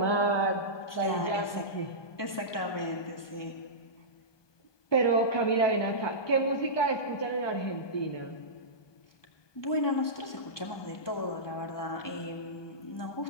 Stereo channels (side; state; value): right; late; 1.2 ms